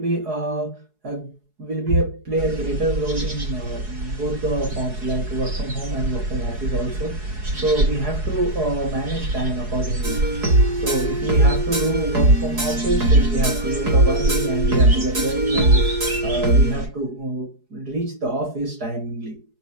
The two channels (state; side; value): late; left; 4.7 ms